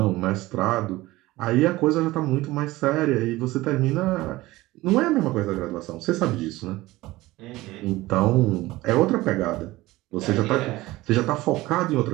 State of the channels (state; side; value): quieter; left; 18.7 dB